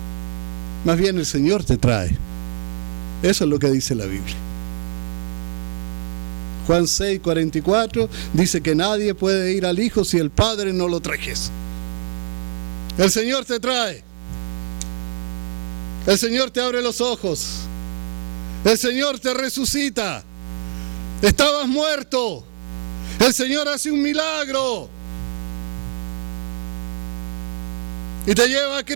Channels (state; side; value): silent; left; digital silence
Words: Más bien el Señor te trae. Eso es lo que dice la Biblia. Juan 6:44 dice que nadie puede ir al Hijo si el Padre no lo trajese. El Señor te trae. El Señor te abre los ojos. El Señor te resucita. Estabas muerto. El Señor hace un milagro. Y te lleva a